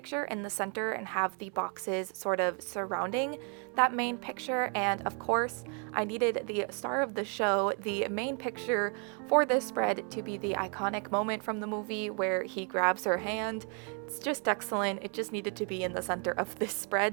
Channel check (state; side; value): quieter; left; 39.2 dB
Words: in the center and have the boxes sort of surrounding that main picture. And of course, I needed the star of the show, the main picture for this spread, to be the iconic moment from the movie where he grabs her hand. It's just excellent. It just needed to be in the center of this